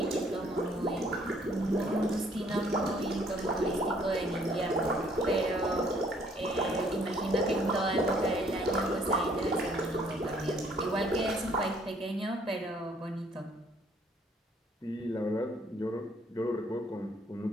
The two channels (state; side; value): normal; both; correlation 0.62